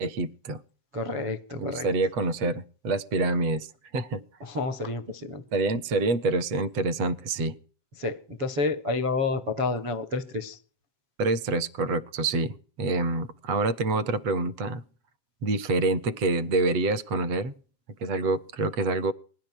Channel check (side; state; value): left; late; 7.7 ms